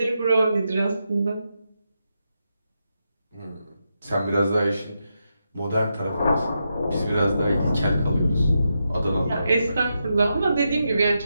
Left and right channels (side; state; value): both; inverted; correlation -0.85